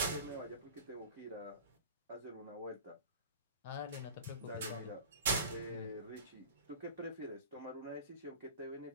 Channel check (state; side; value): inverted; both; correlation -0.37